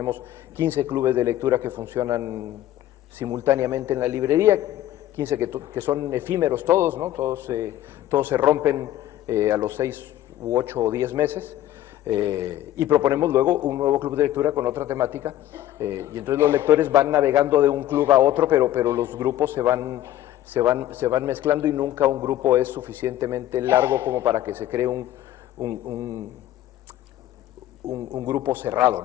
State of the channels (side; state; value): right; quieter; 13.2 dB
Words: 15 clubes de lectura que funcionan simultáneamente en la librería, 15 que son efímeros todos, ¿no? Todos se rompen a los 6 u 8 o 10 meses. Y proponemos luego un nuevo club de lectura con otra temática, y entonces los lectores van navegando de un club a otro, pero los grupos se van mezclando, y nunca un grupo es suficientemente largo como para que se cree un grupo cerrado,